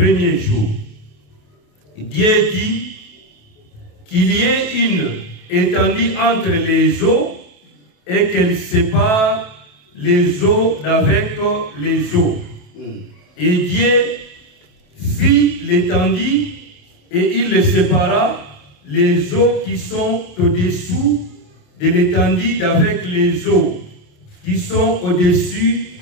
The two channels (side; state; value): right; late; 28 ms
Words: jour. Dieu dit qu'il y ait une étendue entre les eaux et qu'elle sépare les eaux d'avec les eaux. Et Dieu fit l'étendue et il sépara les eaux qui sont au-dessous de l'étendue d'avec les eaux qui sont au-dessus